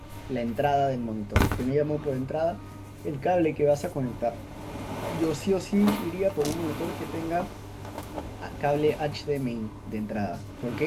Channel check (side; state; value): both; identical; correlation 1.00